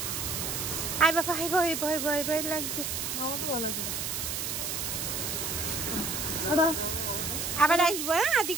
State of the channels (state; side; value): noise; right; hiss, 2 dB below the sound